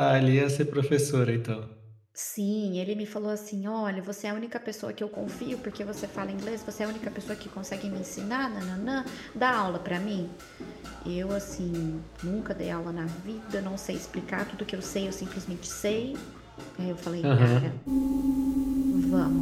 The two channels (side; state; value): both; identical; correlation 1.00